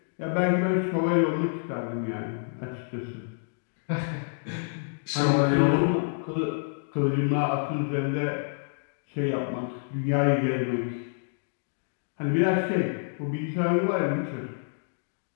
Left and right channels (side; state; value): right; silent; digital silence